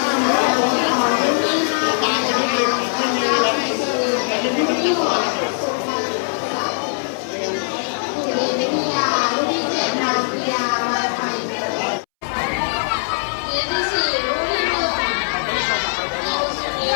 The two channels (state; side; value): silent; right; 66 dB below the other